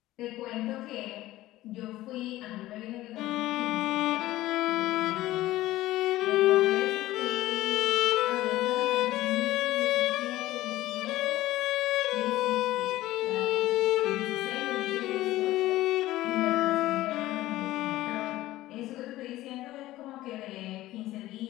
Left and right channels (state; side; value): quieter; right; 16.1 dB